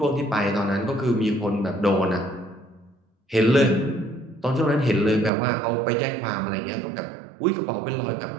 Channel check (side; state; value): left; drops out; at 5.3 s